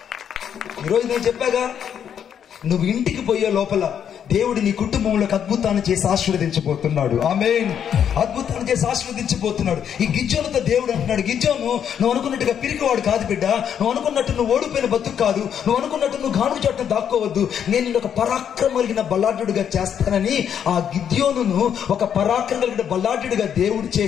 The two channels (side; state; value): right; quieter; 8.6 dB